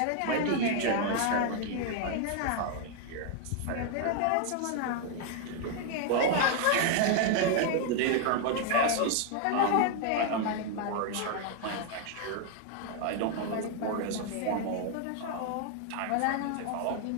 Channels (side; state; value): both; different; correlation 0.00